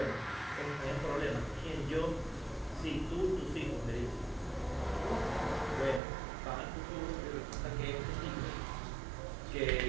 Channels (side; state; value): left; drops out; at 6.0 s